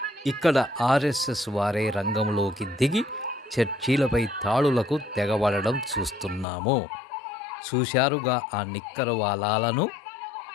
ఇక్కడ ఆర్ఎస్ఎస్ వారే రంగంలోకి దిగి చర్చీలపై తాళులకు తెగబడడం చూస్తున్నాము. చూశారుగా ఆ నిక్కరవాలాలను.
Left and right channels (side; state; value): right; drops out; at 6.5 s